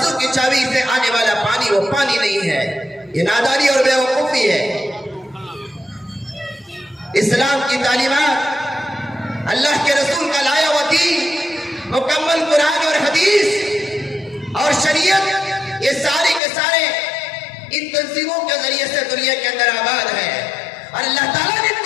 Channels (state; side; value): drops out; right; at 16.4 s